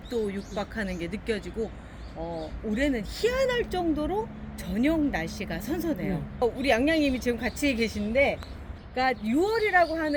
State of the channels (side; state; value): both; identical; correlation 1.00